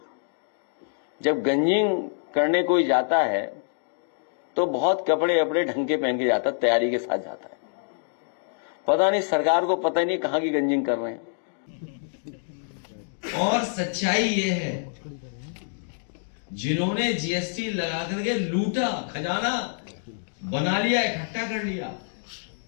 जब गंजिंग करने कोई जाता है तो बहुत कपड़े अपने ढंग के पहन के जाता, तैयारी के साथ जाता है। पता नहीं सरकार को पता ही नहीं कहां की गंजिंग कर रहे हैं। और सच्चाई ये है, जिन्होंने जीएसटी लगा करके लूटा, खजाना बना लिया, इकट्ठा कर लिया,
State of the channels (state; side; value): silent; right; digital silence